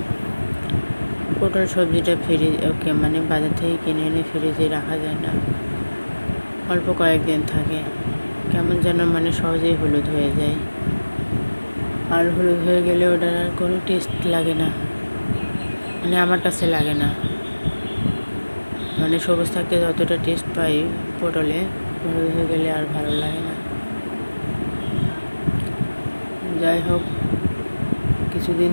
পটল সবজিটা বাজার থেকে কিনে এনে ফ্রিজে রাখা যায় না, অল্প কয়েকদিন থাকে, কেমন যেন সহজেই হলুদ হয়ে যায়। আর হলুদ হয়ে গেলে ওটার আর কোনো টেস্ট লাগে না, আমার কাছে লাগে না। সবুজ থাকতে যতটা টেস্ট পাই পটলে, হলুদ হয়ে গেলে আর ভালো লাগে না। যাই হোক, কিছুদিন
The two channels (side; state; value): both; inverted; correlation -1.00